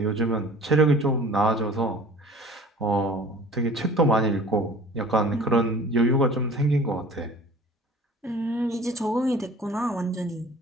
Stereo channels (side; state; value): both; normal; correlation 0.46